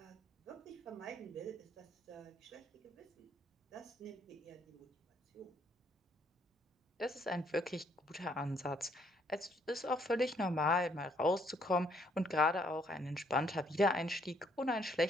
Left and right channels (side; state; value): both; normal; correlation 0.68